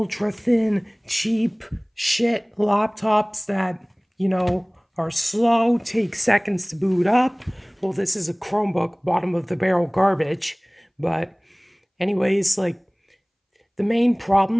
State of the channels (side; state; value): both; identical; correlation 1.00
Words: thin, cheap shit laptops that, are slow, take seconds to boot up. Well, this is a Chromebook, bottom of the barrel garbage. But, anyways, the main